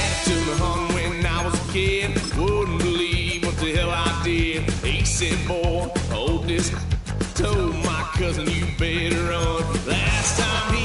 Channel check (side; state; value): both; identical; correlation 1.00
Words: took me home when I was a kid. Wouldn't believe what the hell I did. He said, boy, hold this. Told my cousin, you better run. Last time